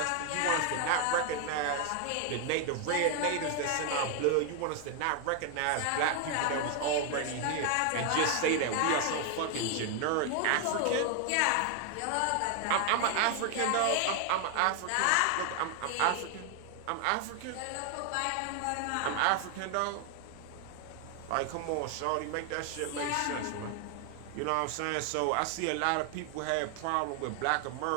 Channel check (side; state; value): both; different; correlation 0.00